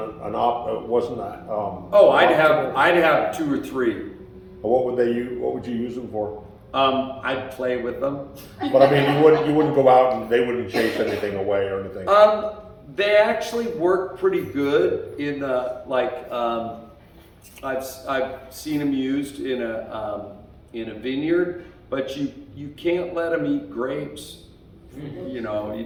I'd have 2 or 3. What would you use them for? I'd play with them. But I mean, you wouldn't go out and they wouldn't chase anything away or anything. They actually work pretty good in I've seen them used in a in a vineyard, but you can't let them eat grapes. You know, you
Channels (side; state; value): both; identical; correlation 1.00